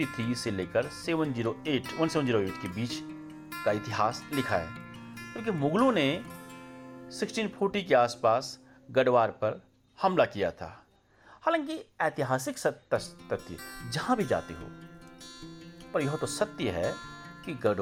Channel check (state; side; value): identical; both; correlation 1.00